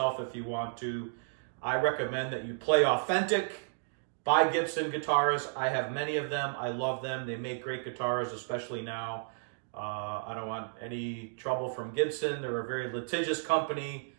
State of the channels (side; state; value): left; silent; digital silence